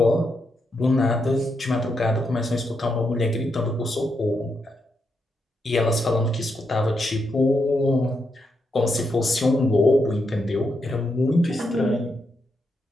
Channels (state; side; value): normal; both; correlation 0.82